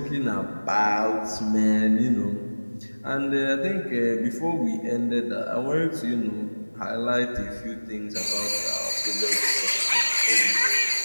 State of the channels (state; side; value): inverted; both; correlation -1.00